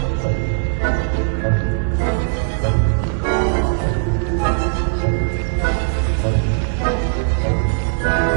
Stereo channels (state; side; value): silent; left; 67 dB below the other